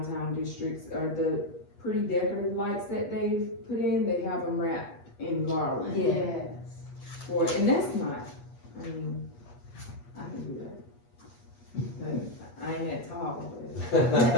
districts, are the pretty decorative lights that they put in, they have them wrapped in garland. Yeah. Yes. And that's not, I mean, I can do that. But I ain't that tall, but.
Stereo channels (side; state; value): right; late; 8.4 ms